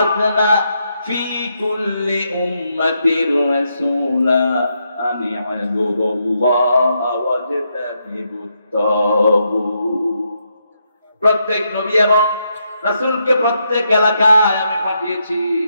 ফি কুল্লি উম্মাতির রাসূলা প্রত্যেক নবী এবং রাসূলকে প্রত্যেক এলাকায় আমি পাঠিয়েছি,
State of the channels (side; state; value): both; inverted; correlation -0.80